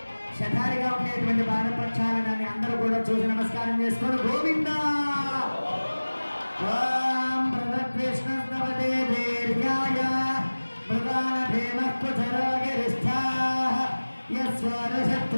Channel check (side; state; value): both; inverted; correlation -1.00